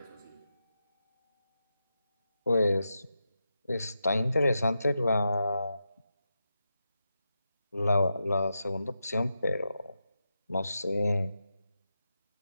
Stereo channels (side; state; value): both; inverted; correlation -0.88